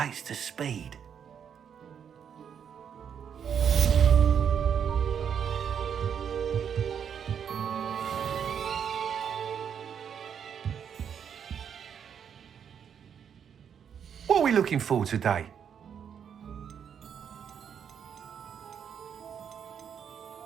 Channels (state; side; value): quieter; left; 7.9 dB